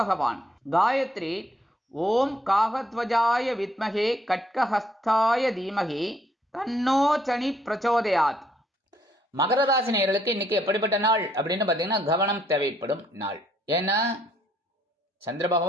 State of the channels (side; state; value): both; normal; correlation 0.69